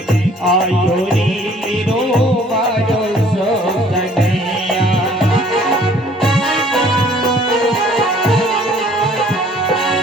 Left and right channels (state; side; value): normal; both; correlation 0.56